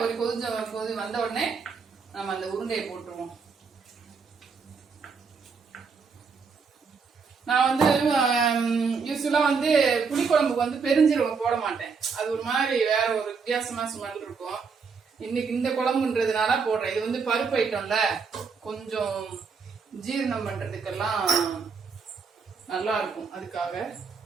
ஒரு கொதி வந்த உடனே நம்ம அந்த உருண்டையை போட்டுருவோம். நான் வந்து யூஸ்வலா வந்து புளிக்குழம்புக்கு வந்து பெருஞ்சீரகம் போட மாட்டேன். அது ஒரு மாதிரி வேற ஒரு வித்தியாசமா ஸ்மெல் இருக்கும். இன்னைக்கு இந்த குழம்புன்றதுனால போடுறேன். இது வந்து பருப்பு ஐட்டம்ல, கொஞ்சம் ஜீரணம் பண்றதுக்கெல்லாம் நல்லா இருக்கும், அதுக்காக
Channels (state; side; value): quieter; left; 5.3 dB